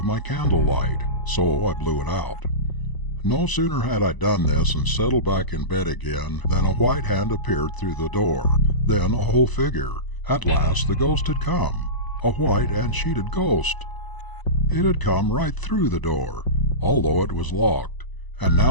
my candlelight, so I blew it out. No sooner had I done this and settled back in bed again than a white hand appeared through the door, then a whole figure. At last the ghost had come, a white and sheeted ghost. It had come right through the door, although it was locked, and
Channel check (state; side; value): late; right; 1.0 ms